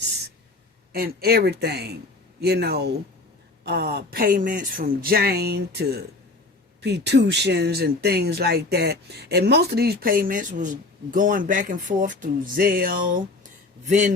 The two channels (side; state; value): right; quieter; 3.2 dB